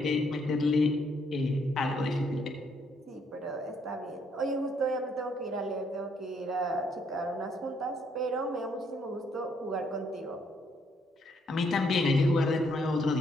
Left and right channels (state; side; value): normal; both; correlation 0.70